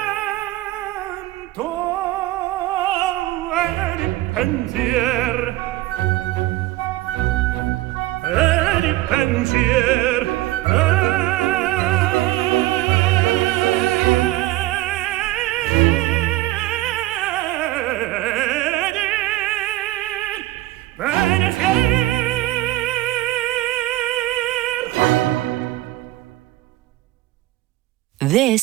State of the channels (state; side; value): quieter; left; 17.0 dB